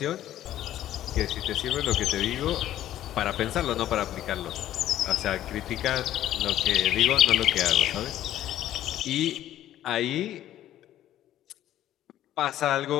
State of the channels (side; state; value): right; quieter; 12.6 dB